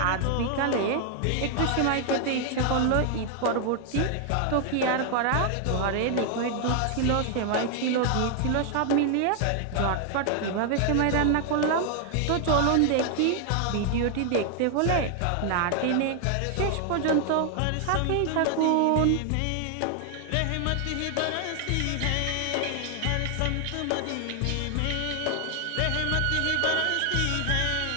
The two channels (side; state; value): both; different; correlation 0.00